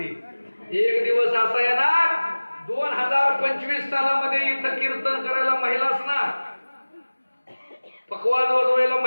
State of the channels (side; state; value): both; inverted; correlation -1.00